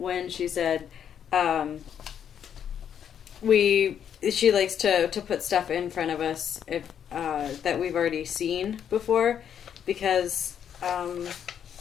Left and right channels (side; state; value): right; quieter; 8.7 dB